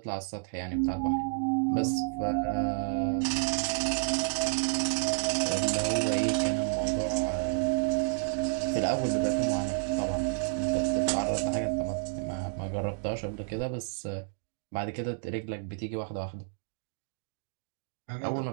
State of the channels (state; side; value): silent; left; digital silence